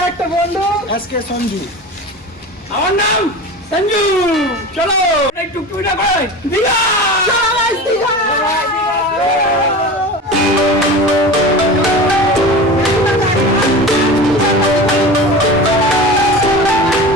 একটা বন্ধু এসকে সঞ্জু। আমার নাম সঞ্জু। চলো একটু টুকটা করে দিঘা। চলো guys, দীঘা।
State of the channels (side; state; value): both; normal; correlation 0.32